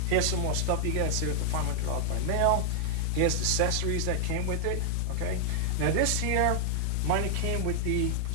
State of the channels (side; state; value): both; different; correlation -0.01